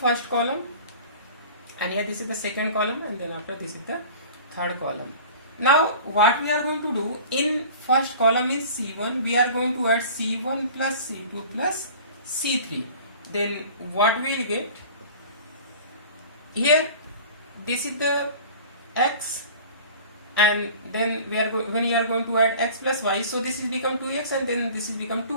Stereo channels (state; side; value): inverted; both; correlation -0.43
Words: column, and here this is the second column, and then after this is the third column. Now what we are going to do, in first column is C1, we are going to add C1 plus C2 plus C3. Then what we will get, here this is the x, and then when you are going to add x plus y, so this is become 2x, and then this is become